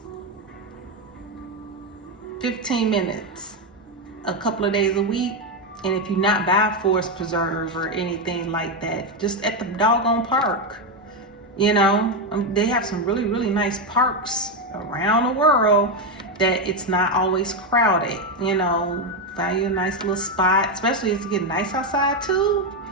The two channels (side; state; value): both; normal; correlation 0.07